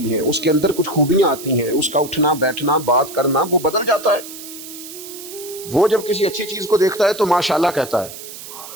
ہیں، اس کے اندر کچھ خوبیاں آتی ہیں، اس کا اٹھنا بیٹھنا بات کرنا وہ بدل جاتا ہے. وہ جب کسی اچھی چیز کو دیکھتا ہے تو ماشاءاللہ کہتا ہے،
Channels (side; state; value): right; noise; hiss, 13 dB below the sound